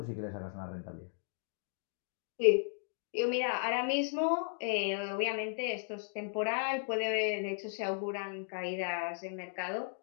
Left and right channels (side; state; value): right; silent; digital silence